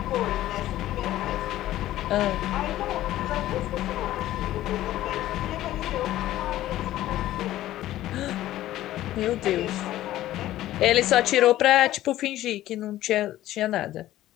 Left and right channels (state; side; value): quieter; right; 14.4 dB